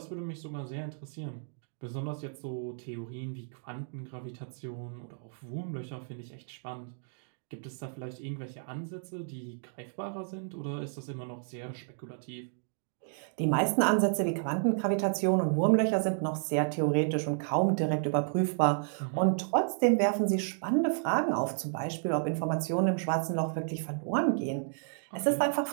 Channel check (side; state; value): left; silent; digital silence